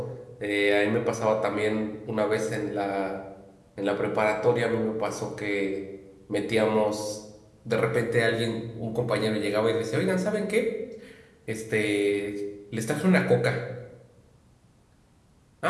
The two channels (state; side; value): identical; both; correlation 1.00